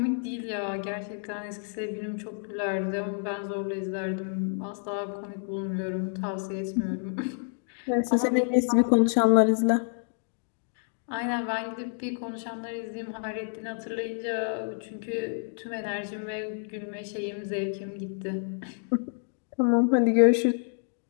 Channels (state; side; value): silent; right; 59 dB below the other